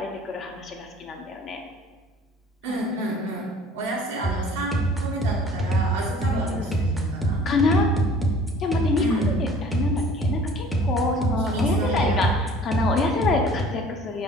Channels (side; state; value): both; normal; correlation 0.50